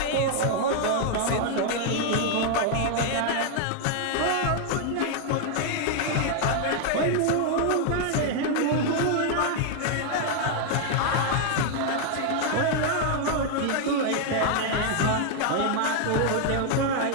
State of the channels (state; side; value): different; both; correlation 0.00